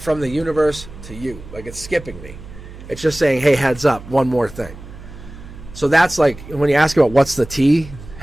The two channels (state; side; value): noise; right; hum, 16 dB below the sound